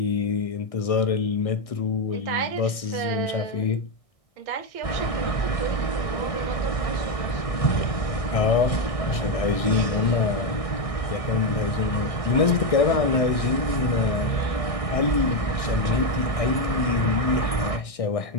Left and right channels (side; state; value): right; late; 1.6 ms